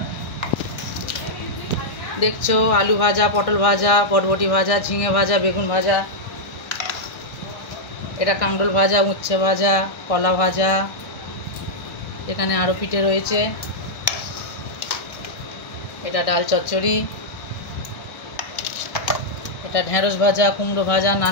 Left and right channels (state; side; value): late; right; 1.6 ms